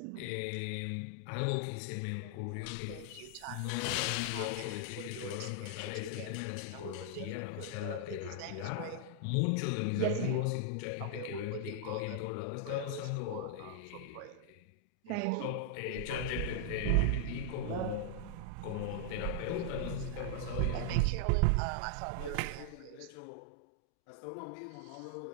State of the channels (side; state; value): both; different; correlation -0.01